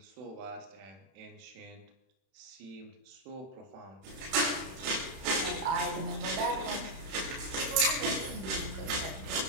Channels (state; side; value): late; left; 31 ms